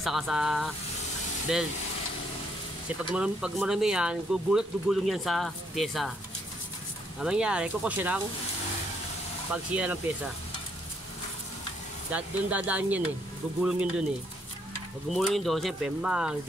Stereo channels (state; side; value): normal; both; correlation 0.72